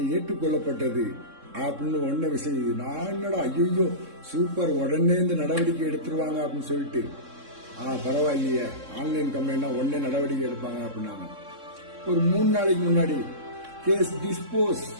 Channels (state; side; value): late; left; 3.6 ms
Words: ஏற்றுக்கொள்ளப்பட்டது அப்படின்னு ஒன்ன விஷயம். நான் என்னடா ஐயோ சூப்பர், உடனே இந்த நடவடிக்கை எடுத்துருவாங்க அப்படின்னு சொல்லிட்டு, பரவாயில்லையே ஆன்லைன் கம்ப்ளைண்ட்னா உடனே நடவடிக்கை எடுப்பாங்க அப்படின்னாங்க. ஒரு 3 நாளைக்கு முன்னாடி கேஸ் டிஸ்போஸ்